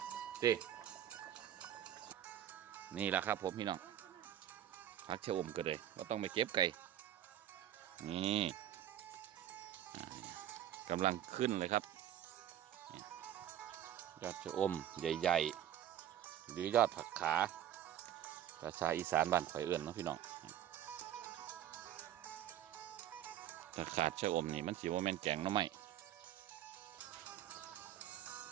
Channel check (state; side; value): quieter; left; 11.4 dB